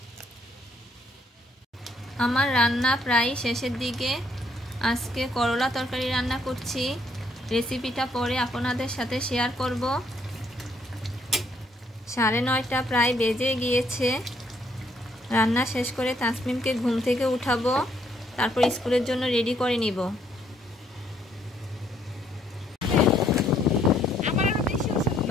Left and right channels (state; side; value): normal; both; correlation 0.69